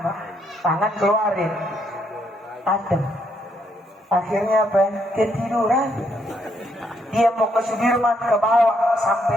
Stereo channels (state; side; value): normal; both; correlation 0.74